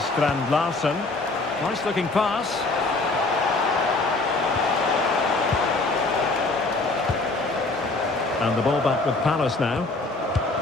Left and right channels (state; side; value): quieter; right; 3.3 dB